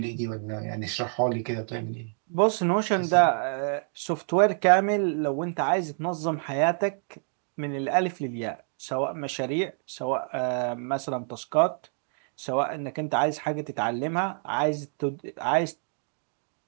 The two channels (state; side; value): silent; left; 60 dB below the other